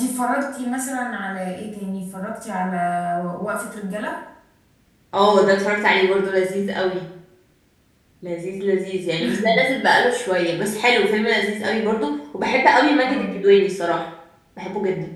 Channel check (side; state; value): both; identical; correlation 1.00